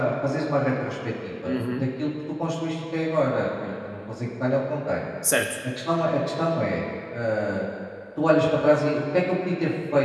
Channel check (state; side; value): identical; both; correlation 1.00